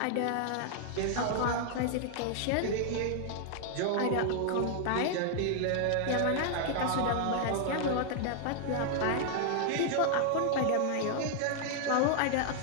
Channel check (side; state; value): both; different; correlation 0.00